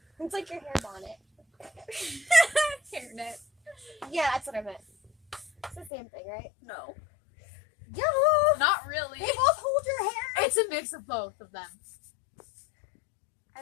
It's like your hair bonnet. Hairnet. Yeah, that's what I meant. It's the same thing, right? No. Yeah. Not really. They both hold your hair. It's a mix of both of them. I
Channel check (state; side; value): drops out; right; at 5.9 s